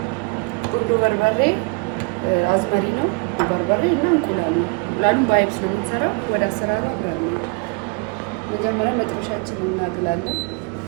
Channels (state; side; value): quieter; left; 31.4 dB